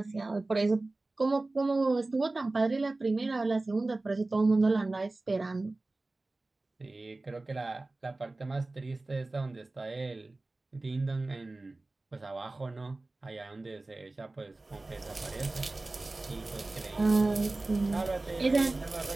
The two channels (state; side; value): quieter; left; 3.1 dB